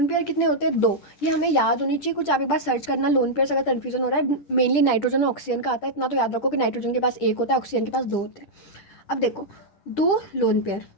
पेयर कितने होते हैं? 2। ये हमें याद होनी चाहिए, कुछ आप एक बार सर्च करना लोन पेयर, अगर कन्फ्यूजन हो रहा है। मेनली नाइट्रोजन और ऑक्सीजन का आता है, इतना तो याद रखो कि नाइट्रोजन के पास 1 होता है, ऑक्सीजन के पास 2 होते हैं। अब देखो 2 लोन पेयर,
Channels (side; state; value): right; late; 10 ms